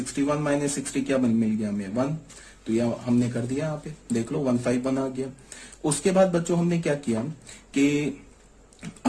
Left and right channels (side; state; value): both; identical; correlation 1.00